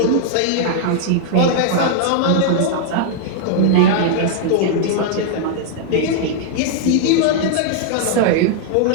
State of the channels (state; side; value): different; both; correlation -0.01